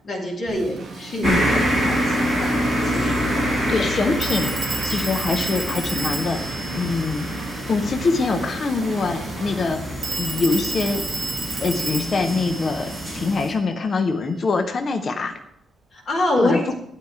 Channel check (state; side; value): normal; both; correlation 0.82